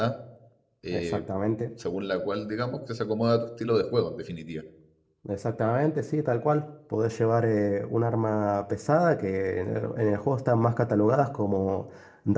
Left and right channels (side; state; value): both; identical; correlation 1.00